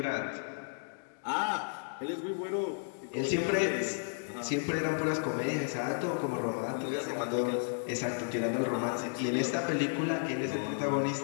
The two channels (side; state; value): right; silent; digital silence